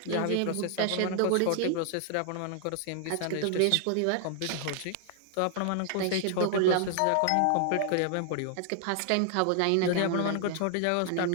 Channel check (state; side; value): different; both; correlation 0.00